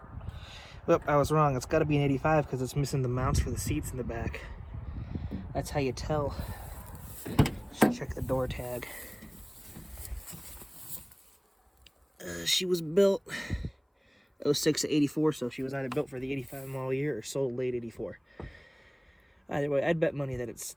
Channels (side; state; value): both; identical; correlation 1.00